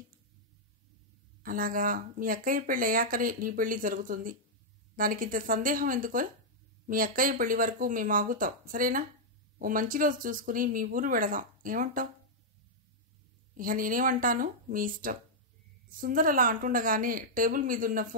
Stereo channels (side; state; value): both; normal; correlation -0.06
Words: అలాగా, మీ అక్కయ్య పెళ్లి అయ్యాకనే నీ పెళ్లి జరుగుతుంది. దానికింత సందేహం ఎందుకో? మీ అక్కయ్య పెళ్లి వరకు మేము ఆగుతాం, సరేనా? ఓ మంచి రోజు చూసుకుని మీ ఊరు వెళదాం, ఏమంటావు? ఇక నేనేమంటాను, మీ ఇష్టం. సుందర్ అలా అంటుండగానే టేబుల్ మీదున్న